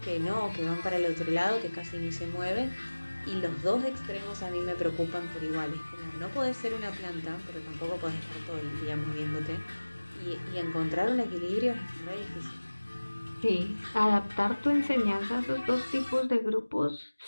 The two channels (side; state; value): both; inverted; correlation -1.00